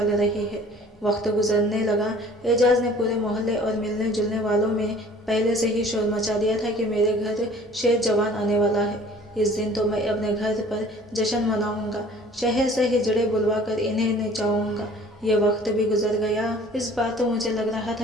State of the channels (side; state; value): both; normal; correlation 0.50